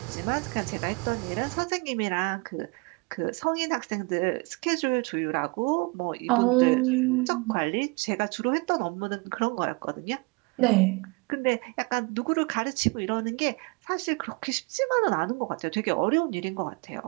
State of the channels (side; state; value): left; quieter; 29.5 dB